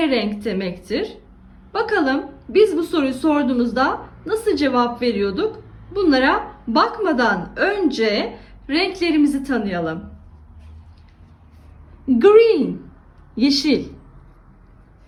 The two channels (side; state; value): both; identical; correlation 1.00